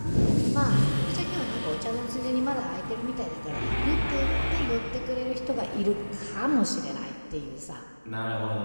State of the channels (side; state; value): both; inverted; correlation -1.00